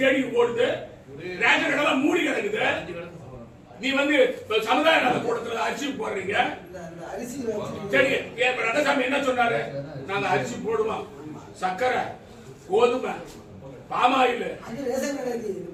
தேடி ஓடுது? ரேஷன் கடை எல்லாம் மூடி கிடக்குது. நீ சமுதாய நல கூட்டத்துல அரிசி போடுறீங்க. சரி, ரங்கசாமி என்ன சொன்னாரு? நாங்க அரிசி போடுவோம், சர்க்கரை, கோதுமை, பாமாயில்.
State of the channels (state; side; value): identical; both; correlation 1.00